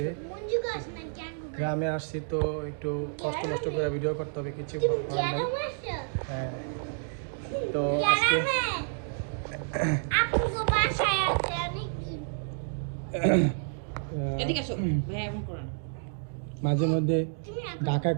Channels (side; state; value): left; silent; digital silence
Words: গ্রামে আসছি। তো একটু কষ্ট করে ভিডিও করতে হবে, কিছু করার নাই। হ্যাঁ, তো আজকে মাঝে মধ্যে ঢাকা